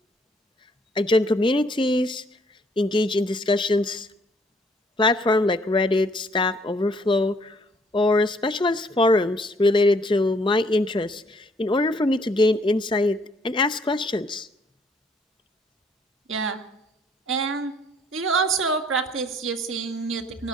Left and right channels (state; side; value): normal; both; correlation 0.64